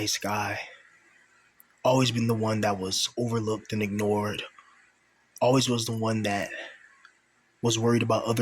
guy. Always been the one that was overlooked and ignored. Always was the one that was worried about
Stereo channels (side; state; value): both; identical; correlation 1.00